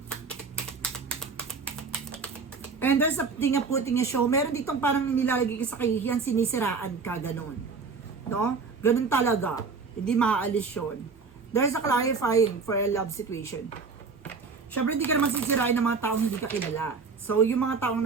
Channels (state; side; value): quieter; left; 4.8 dB